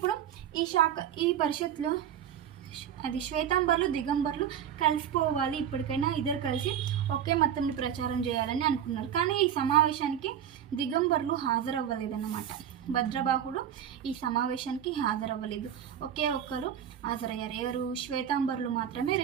ఈ పరిషత్లో అది శ్వేతాంబరులు దిగంబరులు కలిసిపోవాలి, ఇప్పటికైనా ఇద్దరు కలిసి ఒకే మతంని ప్రచారం చేయాలని అనుకున్నారు. కానీ ఈ సమావేశానికి దిగంబరులు హాజరవ్వలేదన్నమాట. భద్రబాహుడు ఈ సమావేశానికి హాజరవ్వలేదు. ఒక్కరు హాజరయ్యారు. ఎవరు? శ్వేతాంబరులు మాత్రమే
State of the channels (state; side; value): quieter; left; 9.5 dB